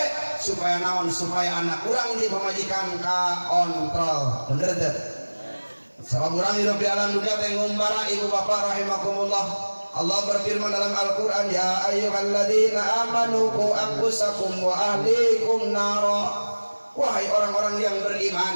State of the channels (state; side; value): inverted; both; correlation -1.00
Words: supaya naon, supaya anak urang di pemajikan ka kontrol. Bener teh? Sabab urang hidup di alam dunia teh ngumbara ibu bapak rahimakumullah. Allah berfirman dalam Al-Qur'an, ya ayyuhalladzina amanu qu anfusakum wa ahlikum nara. Wahai orang-orang yang